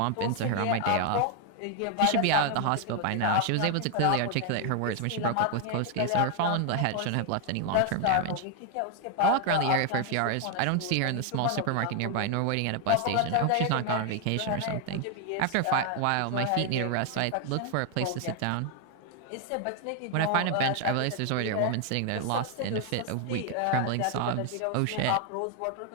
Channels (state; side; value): different; both; correlation 0.00